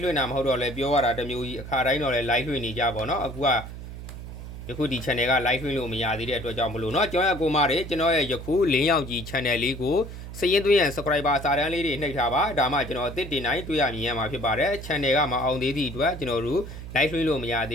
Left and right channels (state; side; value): noise; right; hum, 11 dB below the sound